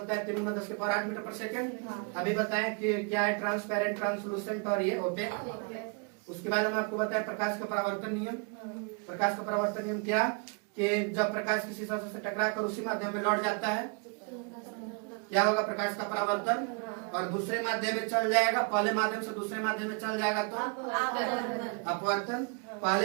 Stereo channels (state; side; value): quieter; left; 36.7 dB